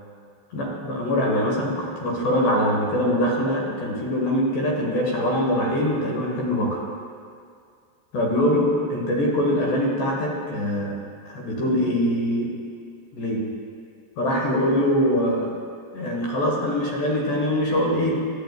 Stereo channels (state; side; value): late; right; 14 ms